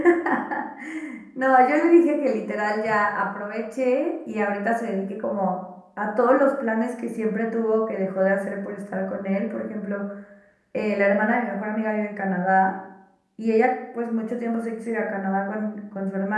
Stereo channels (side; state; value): both; identical; correlation 1.00